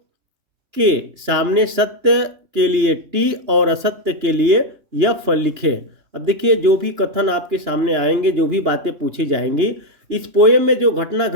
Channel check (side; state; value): left; late; 2.9 ms